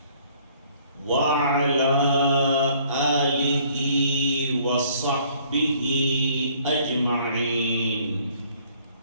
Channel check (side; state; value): both; inverted; correlation -0.59